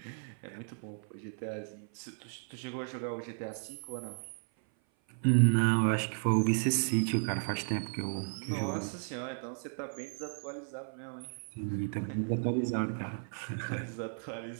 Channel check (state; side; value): silent; left; 55 dB below the other